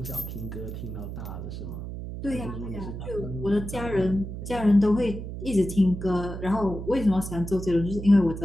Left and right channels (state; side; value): noise; right; hum, 8 dB below the sound